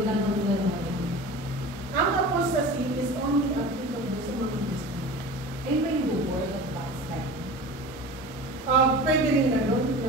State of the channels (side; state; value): both; normal; correlation 0.35